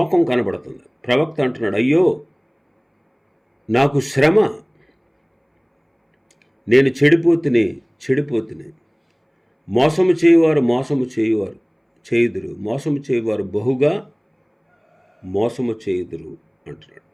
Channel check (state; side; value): identical; both; correlation 1.00